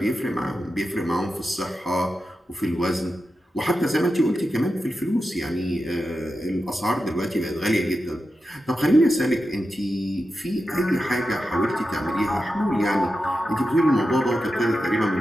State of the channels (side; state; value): both; normal; correlation 0.90